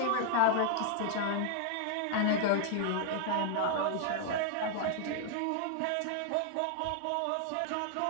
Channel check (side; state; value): both; different; correlation -0.01